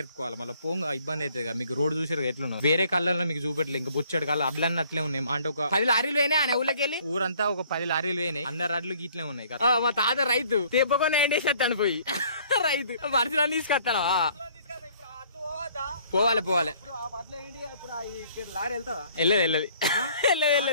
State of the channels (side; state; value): both; inverted; correlation -0.59